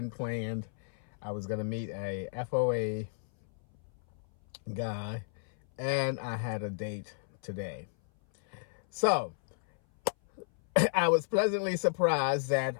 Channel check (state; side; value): silent; right; 56 dB below the other